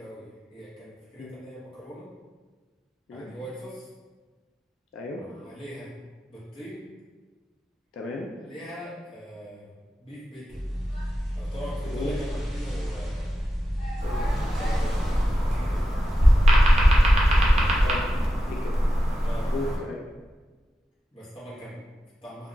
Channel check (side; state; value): both; normal; correlation 0.91